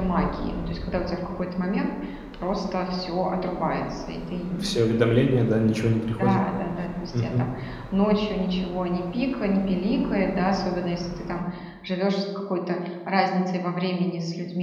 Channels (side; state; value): both; identical; correlation 1.00